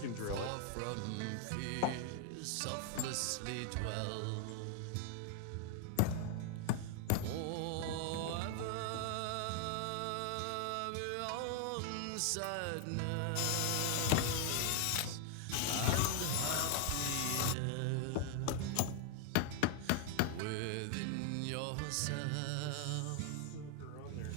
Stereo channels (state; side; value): different; both; correlation 0.00